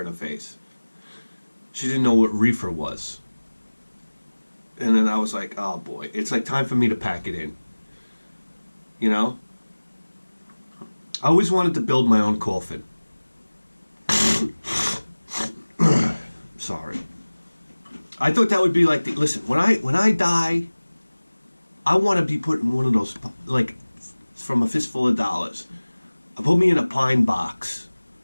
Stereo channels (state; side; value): inverted; both; correlation -1.00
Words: in her face. She didn't know what reefer was. And then I was like, oh boy, it's like time for me to pack it in. You know? I always wanted to build my own coffin. Sorry. I thought that would be like, listen, when I die, I want to be put in one of those, like, from a fistful of dollars. Put me in a pine box.